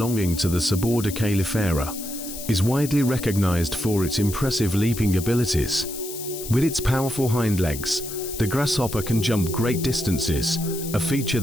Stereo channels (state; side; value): noise; left; hiss, 10 dB below the sound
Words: to the suborder Calyphera, is widely recognized for its impressive leaping abilities. With its powerful hind legs, the grasshopper can jump great distances, a feature